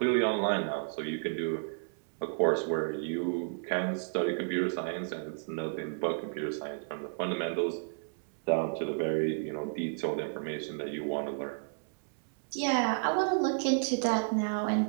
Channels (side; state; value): left; silent; digital silence